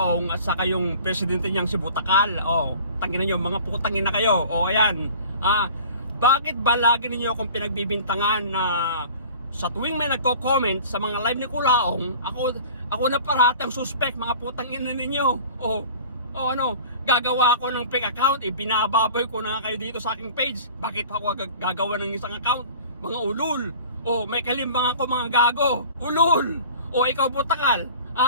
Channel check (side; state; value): both; inverted; correlation -0.43